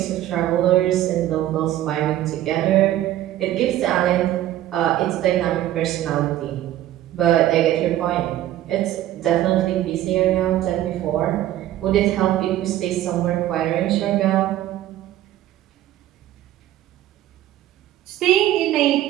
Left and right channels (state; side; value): quieter; left; 13.4 dB